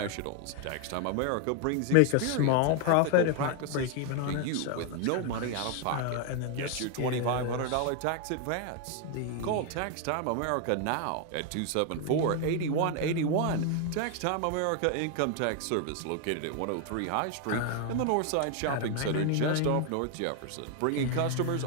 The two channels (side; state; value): both; different; correlation 0.01